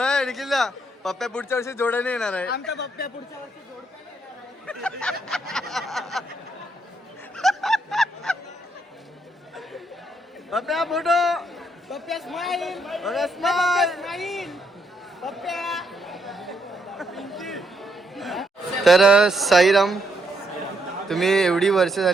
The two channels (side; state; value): both; normal; correlation 0.76